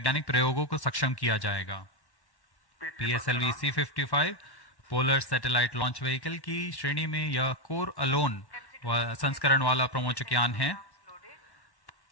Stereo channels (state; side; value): late; right; 1.1 ms